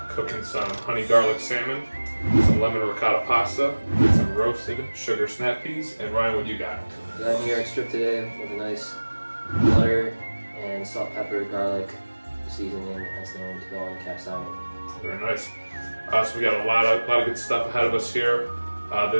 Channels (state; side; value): inverted; both; correlation -1.00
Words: cooking some honey garlic salmon, some lemon ricotta pasta, and some roasted sugar snap peas. And Ryan, what you got? Got a New York strip today with a nice butter and salt, pepper, garlic seasoning as known to go on the cast iron. Very nice. So we got a lot of good stuff ahead of us here.